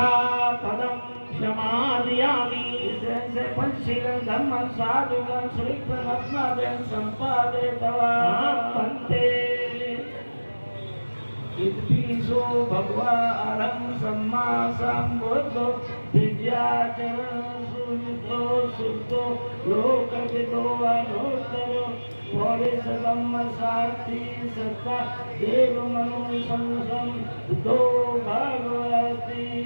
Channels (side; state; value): both; inverted; correlation -1.00